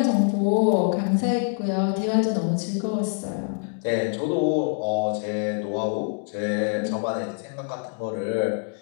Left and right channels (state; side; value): silent; right; 56 dB below the other